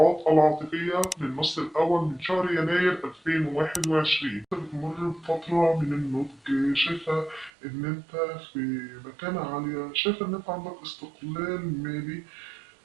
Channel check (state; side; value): drops out; left; at 7.5 s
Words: العاطفية للنص الأول من شهر يناير 2021. بتمر بفترة من النضج، شايفة إن أنت في مكانة عالية، شايفة إن أنت عندك استقلال مالي،